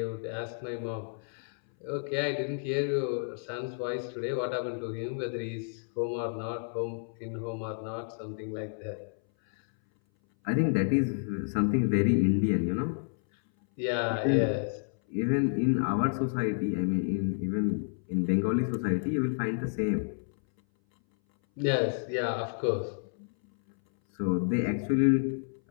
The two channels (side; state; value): right; silent; 58 dB below the other